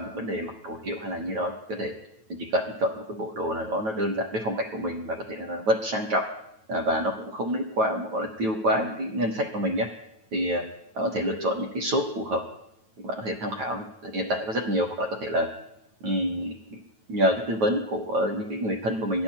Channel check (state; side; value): late; left; 9.2 ms